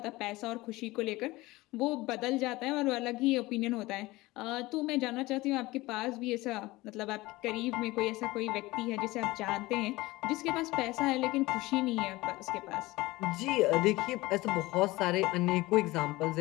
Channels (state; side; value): quieter; right; 19.9 dB